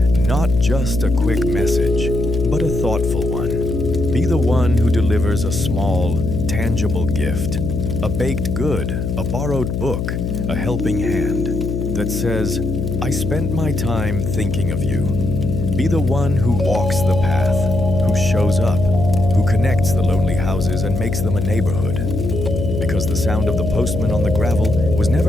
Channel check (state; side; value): noise; left; hum, 2 dB below the sound